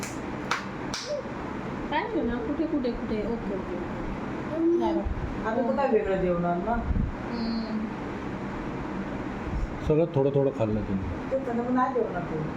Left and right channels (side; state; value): both; identical; correlation 1.00